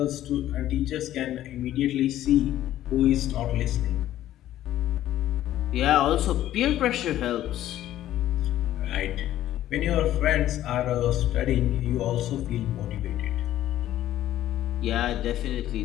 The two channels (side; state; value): right; quieter; 13.1 dB